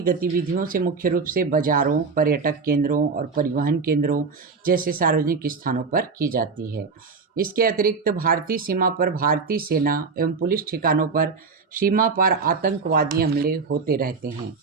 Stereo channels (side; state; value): left; quieter; 4.8 dB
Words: गतिविधियों से मुख्य रूप से बाजारों, पर्यटक केंद्रों और परिवहन केंद्रों जैसे सार्वजनिक स्थानों पर की जाती है। इसके अतिरिक्त भारतीय सीमा पर भारतीय सेना एवं पुलिस ठिकानों पर सीमा पार आतंकवादी हमले होते रहते हैं।